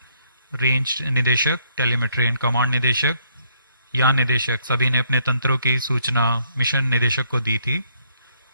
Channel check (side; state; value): both; inverted; correlation -0.70